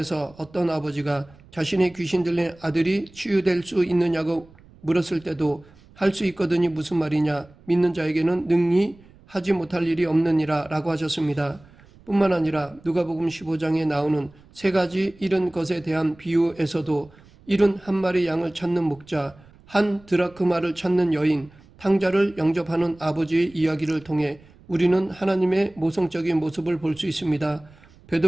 어떤 아버지가 자신의 귀신 들린 아들이 치유될 수 있느냐고 물었을 때도 할 수 있거든이 무슨 말이냐, 믿는 자에게는 능히 하지 못할 일이 없느니라 라고 하셨습니다. 뿐만 아니라 누가복음 15장에 나오는 세 가지 잃은 것에 대한 비유에서도 잃은 한 마리 양을 찾는 목자, 한 드라크마를 찾는 여인, 탕자를 영접하는 아버지의 이야기를 통해 우리는 하나님의 모성적인 모습을 볼 수 있습니다.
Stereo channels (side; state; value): right; noise; rumble, 26 dB below the sound